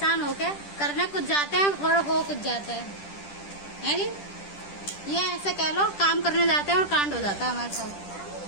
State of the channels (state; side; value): late; right; 10 ms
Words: होके करने कुछ जाते हैं और हो कुछ जाता है जी। ये ऐसे कह लो, काम करने जाते हैं और कांड हो जाता है हमारे साथ।